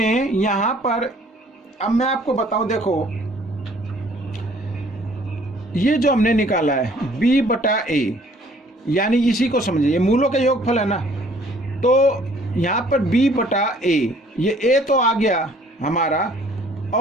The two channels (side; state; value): both; normal; correlation 0.58